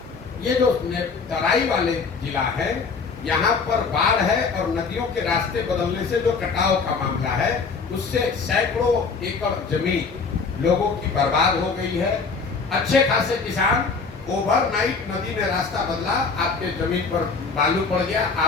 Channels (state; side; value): quieter; right; 4.8 dB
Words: ये जो तराई वाले जिला है, यहाँ पर बाढ़ है और नदियों के रास्ते बदलने से जो कटाव का मामला है, उससे सैकड़ों एकड़ जमीन लोगों की बर्बाद हो गई है। अच्छे खासे किसान, ओवरनाइट नदी ने रास्ता बदला, आपके जमीन पर बालू पड़ गया,